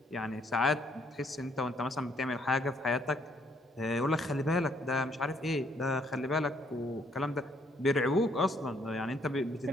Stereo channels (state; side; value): normal; both; correlation 0.68